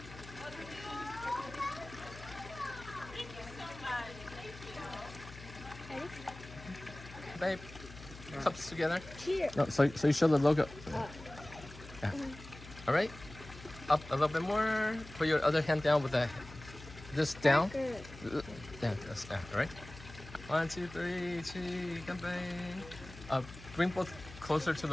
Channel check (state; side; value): noise; left; hum, 16 dB below the sound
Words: Babe, cups together. Cheers. No, so you show the logo. Yeah. All right. Up a little bit more. Put your other hand down with this down. Good. Yeah, that's down. All right. 1, 2, 3, cheese, campaign. Bring both closer to